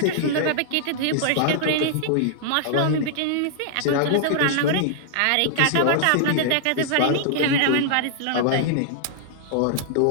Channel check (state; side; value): different; both; correlation -0.01